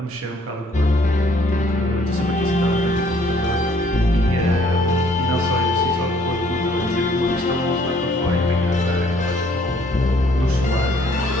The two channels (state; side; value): normal; both; correlation 0.63